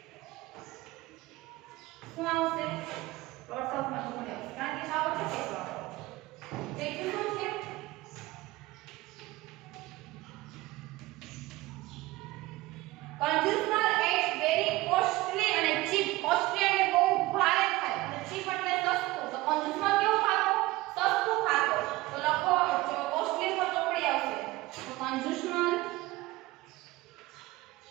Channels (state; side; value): quieter; left; 19.4 dB